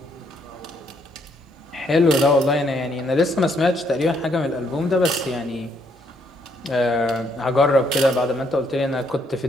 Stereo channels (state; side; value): normal; both; correlation 0.71